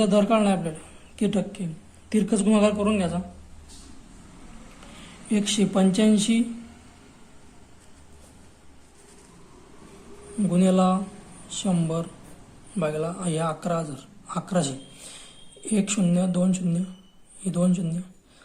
दर काढणार आपल्याला किती टक्के. तिरकस गुणाकार करून घ्यायचा. 185 गुणिला 100 भागिला या 11,000 1 0 2 0 हे 2 0.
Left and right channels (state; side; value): identical; both; correlation 1.00